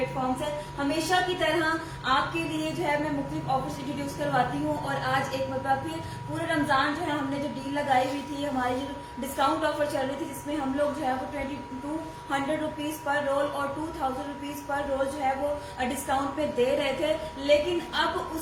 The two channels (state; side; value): identical; both; correlation 1.00